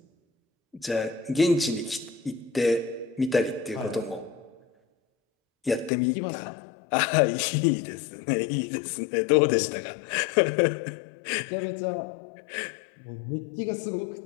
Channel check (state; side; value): drops out; right; at 5.9 s